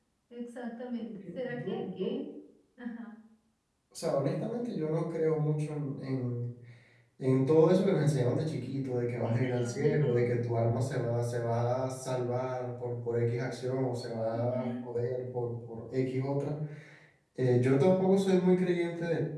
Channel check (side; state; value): both; identical; correlation 1.00